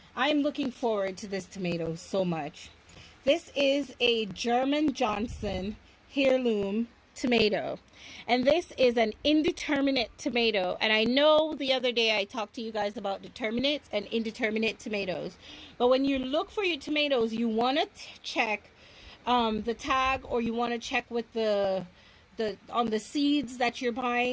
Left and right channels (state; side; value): identical; both; correlation 1.00